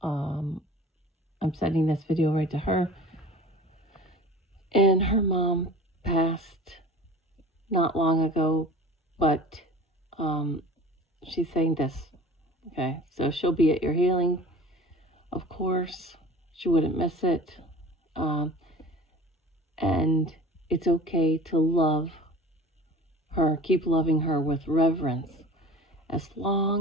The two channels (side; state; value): both; normal; correlation 0.41